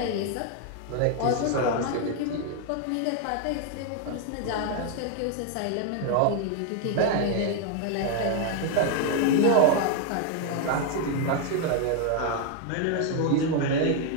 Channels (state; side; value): different; both; correlation 0.01